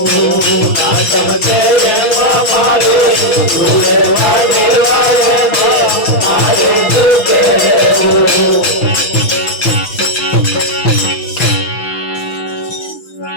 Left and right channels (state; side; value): late; right; 6.1 ms